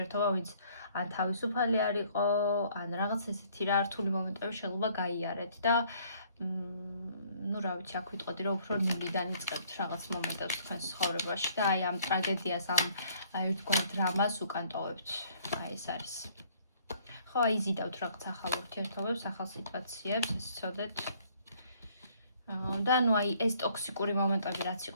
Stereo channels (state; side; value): inverted; both; correlation -0.61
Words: ვინც ან თავისუფალი არ იყო, ან რაღაც ესეთი რა რთული მომენტები შეიძლება გაიარეთ და ну, რა ვიცი, აქ ვიტყოდი რომ უფრო ნულიდან იწყებთ რაღაც მომენტებს თქვენს ცხოვრებაში და აი ამ ტრაგედიას, ამ ერთგვარ დრამას უკან ტოვებთ. აი ეს არის. ხო, აი იზიდავთ რაღაც ახალ ურთიერთობებს, ახალ სიტუაციებს, ეს ცოდეთ. და ნუ აი ეს ტოქსიკური მომენტები რაც